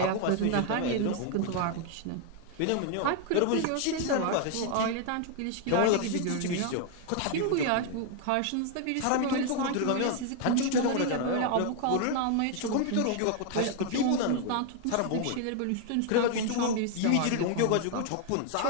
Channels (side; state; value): both; different; correlation 0.00